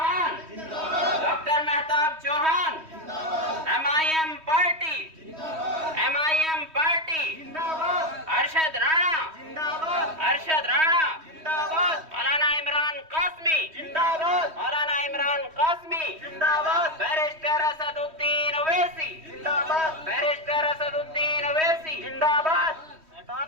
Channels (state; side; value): late; left; 3.1 ms